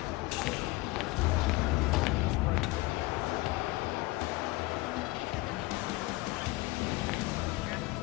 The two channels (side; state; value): right; quieter; 20.8 dB